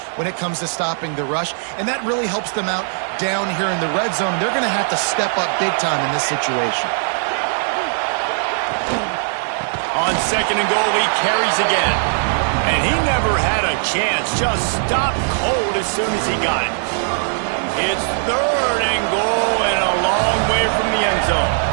when it comes to stopping the rush, and that really helps them out down here in the red zone. They're going to have to step up big time in this situation. On second and goal, he carries again. And he never had a chance. Just stopped cold as soon as he got it. It's third and goal and a long way from the end zone.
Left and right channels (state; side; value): silent; left; 66 dB below the other